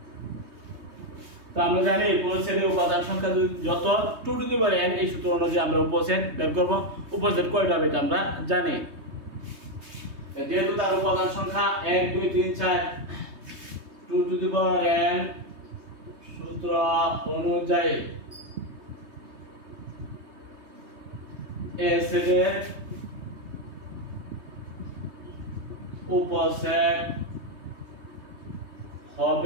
তো আমরা জানি উপসেটের উপাদান সংখ্যা যত 2 টু দি পাওয়ার n, এই সূত্র অনুযায়ী আমরা উপসেট বের করব। উপসেট কয়টা হবে এটা আমরা জানি। যেহেতু তার উপাদান সংখ্যা 1 2 3 4, 2 টু দি পাওয়ার n সূত্র অনুযায়ী a সেটের উপসেট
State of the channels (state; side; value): late; left; 3.2 ms